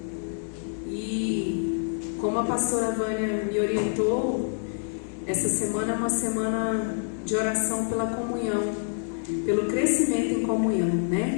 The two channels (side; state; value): right; silent; digital silence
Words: E como a pastora Vânia me orientou, essa semana é uma semana de oração pela comunhão, pelo crescimento em comunhão,